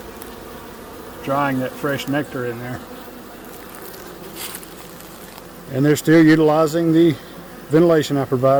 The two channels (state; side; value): noise; right; hum, 27 dB below the sound